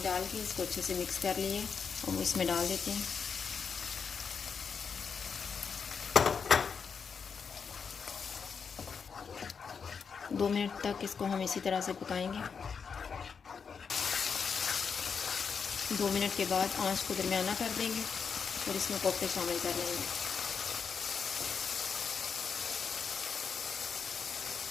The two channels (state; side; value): quieter; right; 6.1 dB